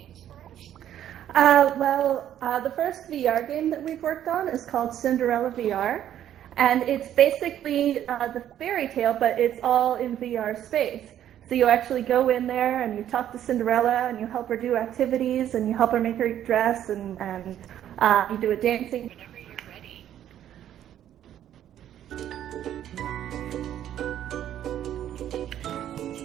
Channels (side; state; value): left; quieter; 11.0 dB